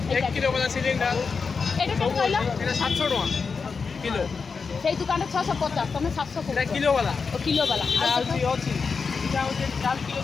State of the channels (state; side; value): quieter; right; 5.1 dB